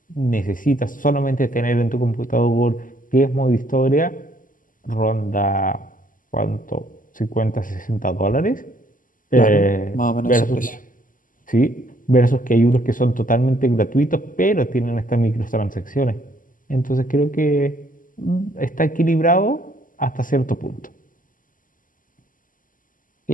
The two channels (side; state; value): right; late; 0.39 ms